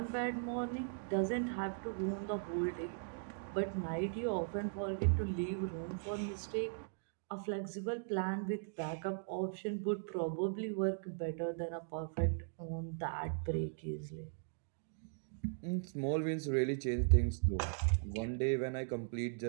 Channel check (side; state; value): left; silent; digital silence